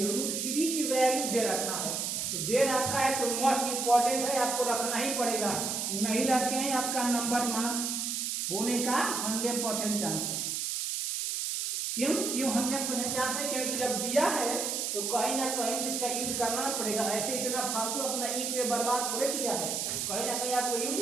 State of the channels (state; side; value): noise; right; hiss, 1 dB below the sound